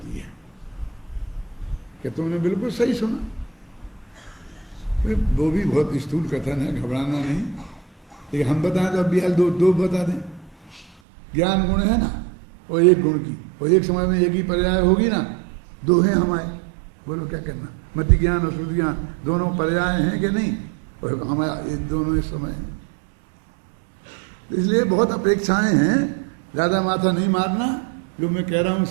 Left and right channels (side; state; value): left; drops out; at 10.9 s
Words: है। कि तुमने बिल्कुल सही सुना, वो भी बहुत स्थूल कथन है, घबराना नहीं। लेकिन हम बताएं तो अब भी दो दो बता दें। ज्ञान गुण है ना, और एक गुण की, और एक समय में एक ही पर्याय होगी ना, दो हैं हमारे, बोलो क्या करना। मति ज्ञान और शुद्ध ज्ञान दोनों पर्याय हैं कि नहीं, और हमारे दोनों इस समय हैं। इसलिए बहुत अपेक्षाएं हैं, ज्यादा माथा नहीं मारना। जो मैं कह रहा हूं